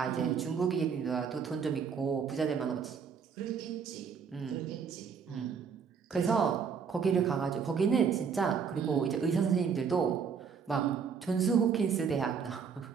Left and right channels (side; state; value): left; quieter; 6.4 dB